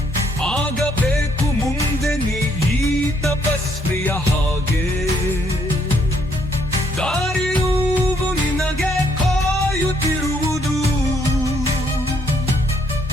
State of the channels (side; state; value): both; normal; correlation 0.69